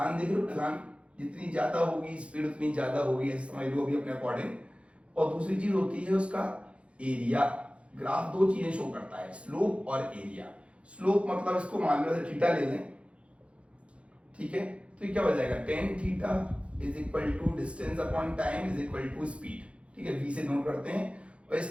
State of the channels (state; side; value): late; left; 0.061 ms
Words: देख लो ढलान जितनी ज्यादा होगी स्पीड उतनी ज्यादा होगी, ऐसे समझ लो अभी अपने अकॉर्डिंग। और दूसरी चीज होती है उसका एरिया। ग्राफ दो चीजें शो करता है, स्लोप और एरिया। स्लोप मतलब इसको मान लो थीटा ले लें, ठीक है। तो ये क्या हो जाएगा? tan theta is equal to distance upon time is equal to speed, ठीक है। v से नोट करते हैं। और